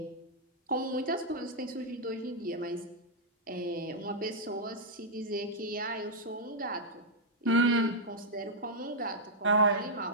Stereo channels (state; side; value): normal; both; correlation -0.07